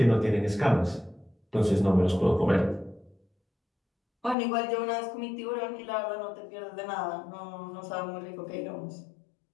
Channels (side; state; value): right; drops out; at 4.4 s